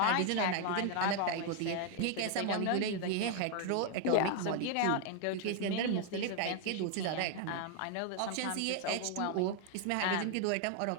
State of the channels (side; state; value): both; different; correlation 0.00